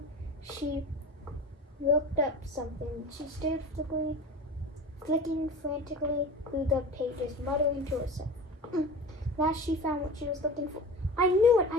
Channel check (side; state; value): both; normal; correlation 0.33